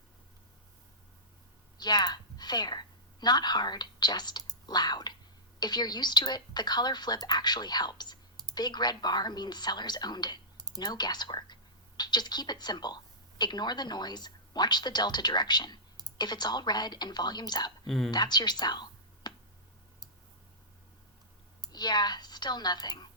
Yeah, fair. Not hard, just loud. If you're used to it, the color flip actually helps. Big red bar means sellers owned it. No guesswork. Just keep it simple. Ignore the noise, watch the delta direction. If it's all red and volume's up, that's your sell. Yeah, still nothing.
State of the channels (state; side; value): normal; both; correlation -0.14